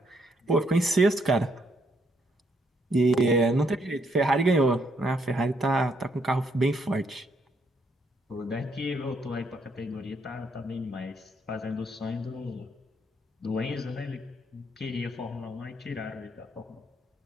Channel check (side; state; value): both; normal; correlation 0.73